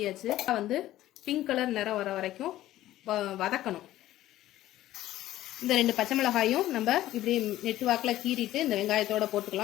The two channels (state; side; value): quieter; right; 14.5 dB